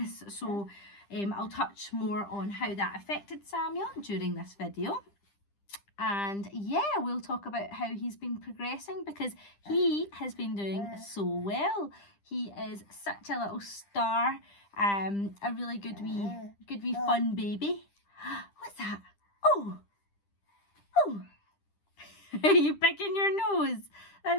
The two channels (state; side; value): late; right; 10 ms